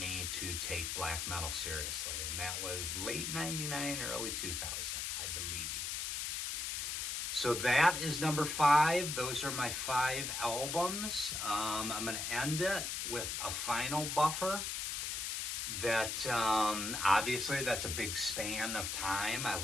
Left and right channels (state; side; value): noise; left; hiss, 2 dB below the sound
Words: to take black metal seriously, and that was late 99, early 2000, I believe. So that is number 5. Those are my 5 albums. I'm going to end it with a final buffer. That obviously that's a big span of time. I